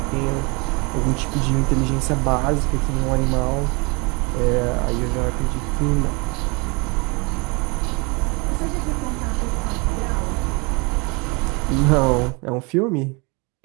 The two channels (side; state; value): left; quieter; 29.3 dB